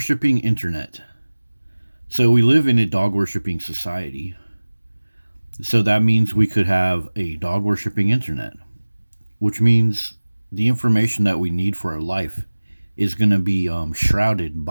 internet. So we live in a dog worshipping society. So that means we could have a dog worshipping internet, which means the information that we need for our life is going to be shrouded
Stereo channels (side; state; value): both; inverted; correlation -1.00